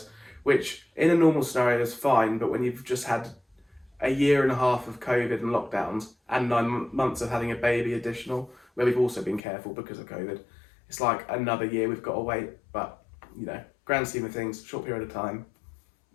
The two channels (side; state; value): right; drops out; at 9.4 s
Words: which in a normal scenario is fine, but when you've just had a 1.5 years of COVID and lockdowns and 9 months of having a baby additional, where we've also been careful because of COVID, it's like another year we've got to wait. But, grand scheme of things, short period of time.